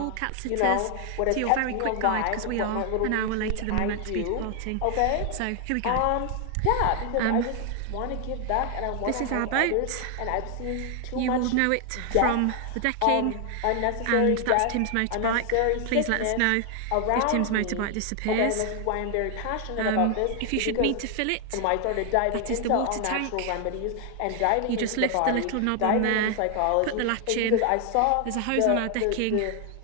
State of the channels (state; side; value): different; both; correlation 0.00